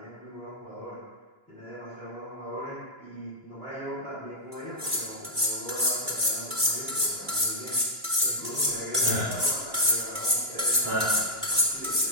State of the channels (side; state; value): left; late; 2.9 ms